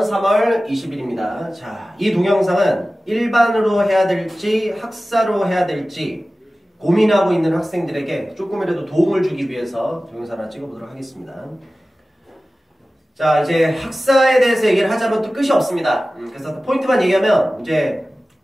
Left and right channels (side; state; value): both; normal; correlation 0.96